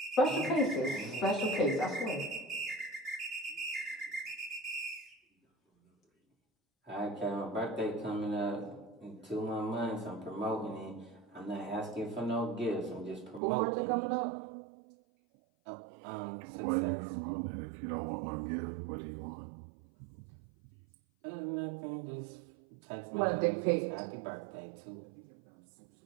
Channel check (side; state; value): left; drops out; at 13.4 s